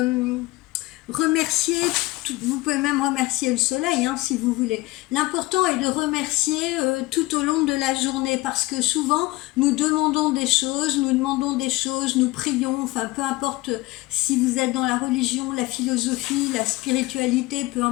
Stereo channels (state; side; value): quieter; right; 20.3 dB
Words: Remercier, vous pouvez même remercier le soleil si vous voulez. L'important est de remercier tout au long de la journée, parce que souvent nous demandons des choses, nous prions, enfin peu importe si vous êtes dans la religion, la philosophie, la spiritualité, peu